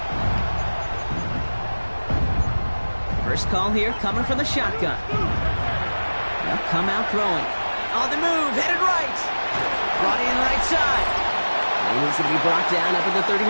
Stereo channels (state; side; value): inverted; both; correlation -1.00